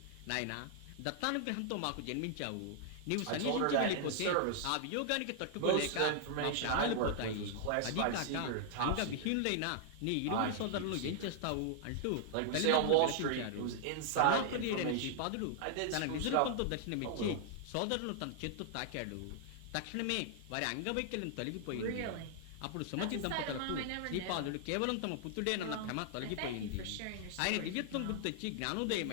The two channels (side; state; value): both; different; correlation -0.01